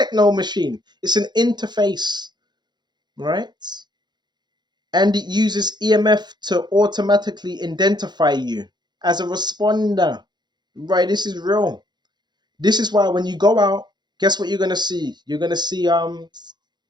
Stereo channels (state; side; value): late; left; 0.21 ms